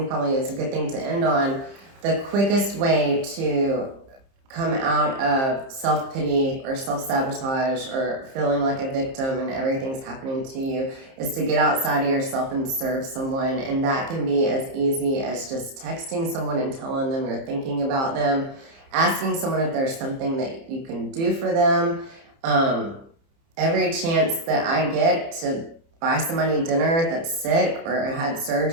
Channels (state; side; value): late; left; 30 ms